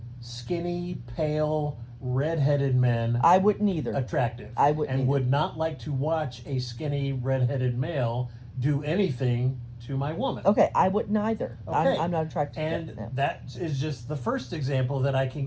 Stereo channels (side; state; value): both; identical; correlation 1.00